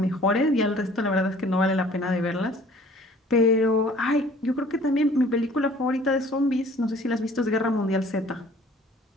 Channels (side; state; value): both; normal; correlation 0.53